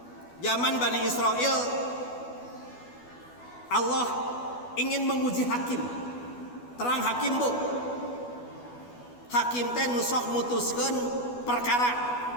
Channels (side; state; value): right; late; 12 ms